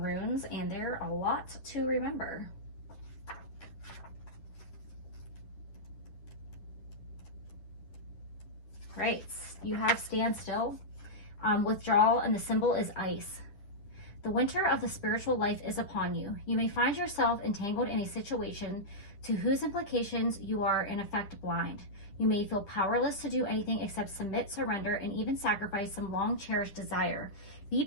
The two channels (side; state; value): right; late; 10 ms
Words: and there are a lot to remember. Right, you have standstill, withdrawal, and the symbol is ice. The winter of the spiritual life is upon you. You may find yourself entangled in a situation to whose implications you are in effect blind. You may feel powerless to do anything except submit, surrender, and even sacrifice some long-cherished desire. Be